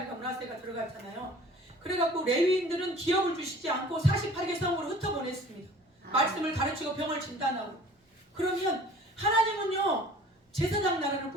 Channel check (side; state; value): both; normal; correlation 0.48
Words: 므낫세가 들어갔잖아요. 그래갖고 레위인들은 기업을 주시지 않고 48개 성으로 흩어보냈습니다. 말씀을 가르치고 병을 진단하고. 그러면 하나님은요 제사장 나라를